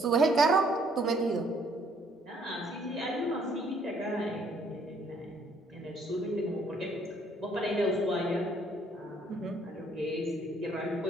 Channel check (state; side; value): normal; both; correlation 0.64